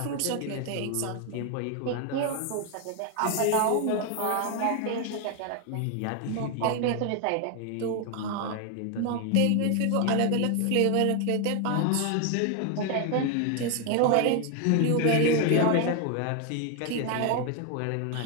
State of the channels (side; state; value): both; different; correlation 0.01